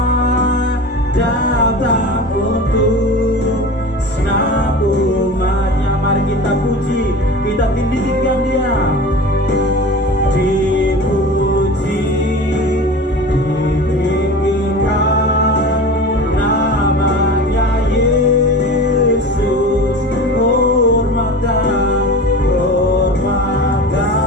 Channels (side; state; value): both; normal; correlation 0.34